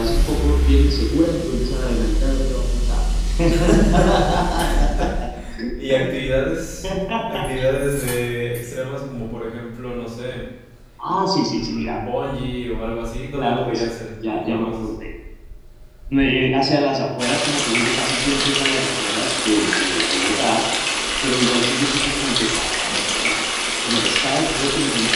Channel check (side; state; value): both; identical; correlation 1.00